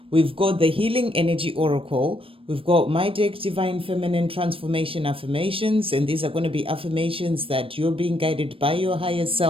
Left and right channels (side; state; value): left; late; 0.26 ms